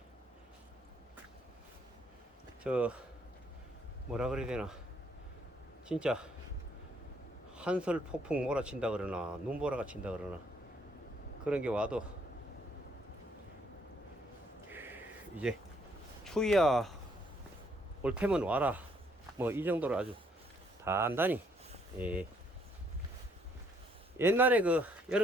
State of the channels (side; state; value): both; normal; correlation 0.68